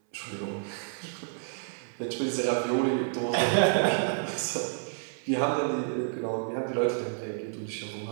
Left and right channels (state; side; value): silent; left; 58 dB below the other